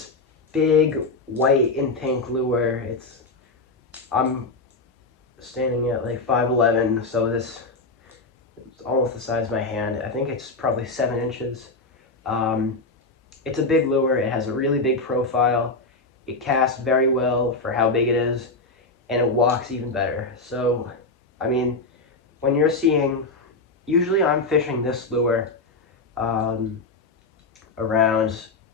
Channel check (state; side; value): quieter; right; 3.4 dB